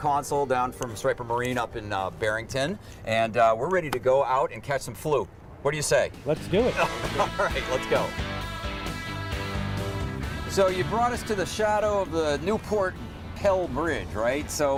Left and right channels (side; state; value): both; identical; correlation 1.00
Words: down from Striper Marine up in Barrington, and we're ready to go out and catch some fluke. What do you say? Let's do it. All right, let's go. So you brought us to the shadow of the Newport Pell Bridge, right?